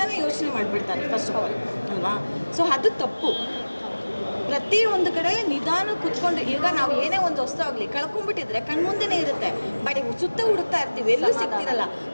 ಯೋಚನೆ ಮಾಡಿಬಿಡ್ತಾರೆ ಫಸ್ಟ್ ಆಫ್ ಆಲ್ ಅಲ್ವಾ. ಸೊ ಅದು ತಪ್ಪು. ಪ್ರತಿಯೊಂದು ಕಡೆ ನಿಧಾನ ಕೂತ್ಕೊಂಡು, ಈಗ ನಾವು ಏನೇ ಒಂದು ವಸ್ತು ಆಗಲಿ ಕಳ್ಕೊಂಡ್ಬಿಟ್ಟಿದ್ರೆ ಕಣ್ಮುಂದೆನೇ ಇರುತ್ತೆ, ಬಟ್ ಸುತ್ತ ಹುಡುಕ್ತಾ ಇರ್ತೀವಿ, ಎಲ್ಲೂ ಸಿಗ್ತಿರಲ್ಲ.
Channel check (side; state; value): both; inverted; correlation -1.00